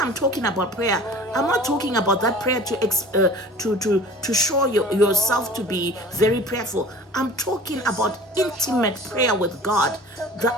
talking about prayer, I'm not talking about that prayer to show yourself to be very prayerful. I'm talking about intimate prayer with God, the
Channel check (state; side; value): normal; both; correlation 0.43